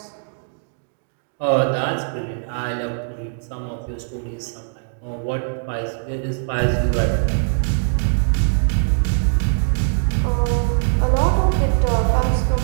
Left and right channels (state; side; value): silent; left; digital silence